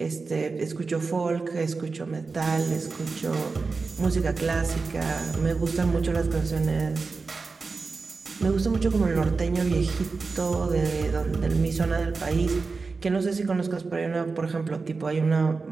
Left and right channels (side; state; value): left; quieter; 4.3 dB